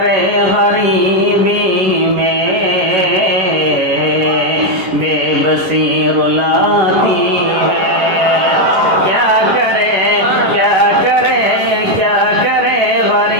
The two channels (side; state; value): left; late; 11 ms